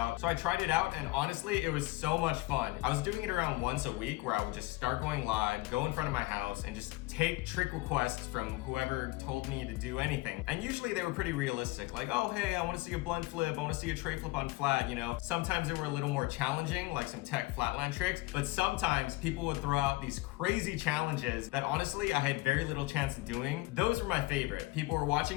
So I tried it out and honestly, it was so much fun. I was doing it around once a week where I would just start going live, go in front of my house and just take trick requests from whoever told me to do anything. And usually they were pretty realistic, like, oh, hey, I wanna see a blunt flip, I wanna see a tray flip on flat, you know? Sometimes they were a little more challenging, like some tech flatland tricks, but sometimes people would throw out these crazy challenges that honestly I had very little chance of doing. Those were my favorite. People were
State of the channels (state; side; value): quieter; right; 20.6 dB